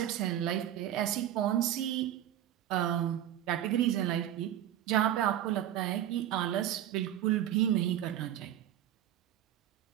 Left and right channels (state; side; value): quieter; left; 11.7 dB